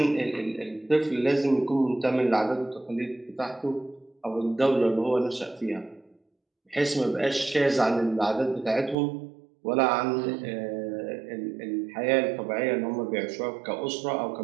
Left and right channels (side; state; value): left; drops out; at 9.0 s